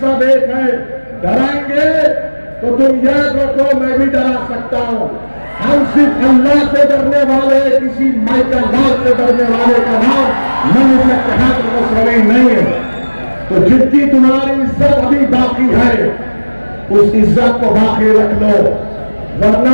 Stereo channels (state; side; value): inverted; both; correlation -1.00